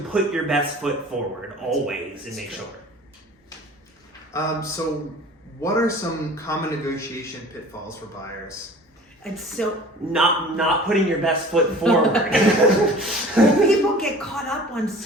your best foot forward always and make sure. So what are some common negotiation pitfalls for buyers? It's so not putting your best foot forward. people get caught up on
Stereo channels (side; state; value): both; normal; correlation 0.44